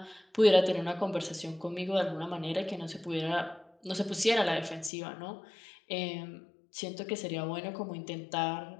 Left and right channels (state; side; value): drops out; right; at 4.9 s